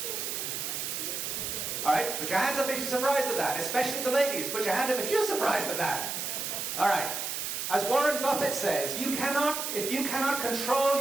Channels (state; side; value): noise; right; hiss, 3 dB below the sound